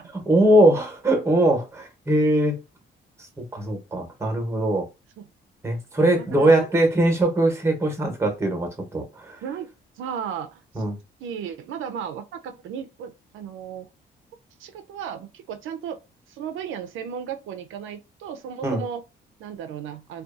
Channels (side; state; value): both; normal; correlation 0.71